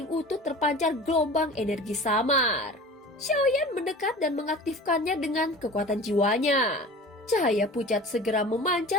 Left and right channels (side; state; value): both; normal; correlation 0.39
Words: utuh terpancar gelombang energi samar. Xiaoyan mendekat dan mengaktifkannya dengan kekuatan jiwanya. Cahaya pucat segera